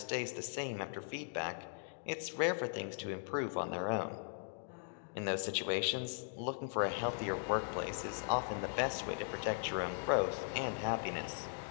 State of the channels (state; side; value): silent; right; digital silence